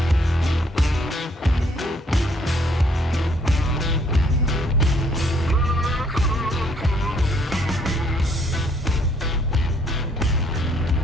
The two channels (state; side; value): normal; both; correlation 0.66